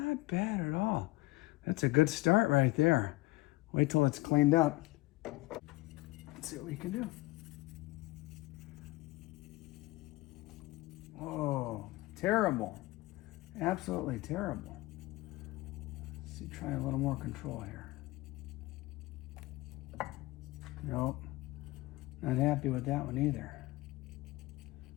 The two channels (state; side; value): quieter; right; 20.1 dB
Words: bad at all. That's a good start right there. Wait till it's cleaned up. Let's see what we can do. Oh, terrible. Absolutely terrible. Let's see, try a little more control here. Nope. Not happy with that one either.